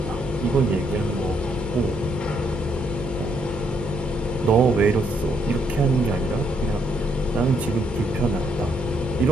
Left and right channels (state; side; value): normal; both; correlation 0.73